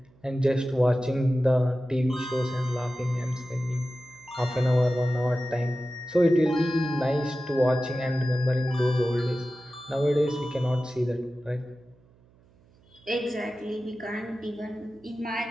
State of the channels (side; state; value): right; noise; hum, 30 dB below the sound